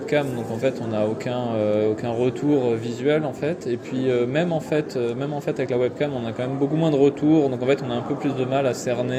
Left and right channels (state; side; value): identical; both; correlation 1.00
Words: donc en fait on n'a aucun retour visuel en fait. Et puis même en fait avec la webcam, on a quand même beaucoup moins de retours, donc en fait on a un peu plus de mal à